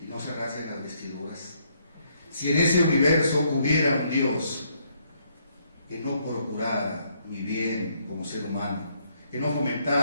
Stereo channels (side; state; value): both; inverted; correlation -0.71